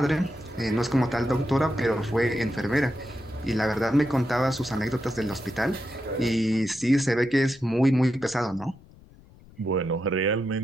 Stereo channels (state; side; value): noise; left; rumble, 24 dB below the sound